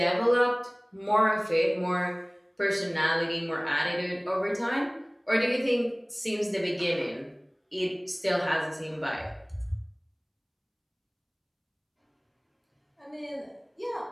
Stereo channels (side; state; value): both; identical; correlation 1.00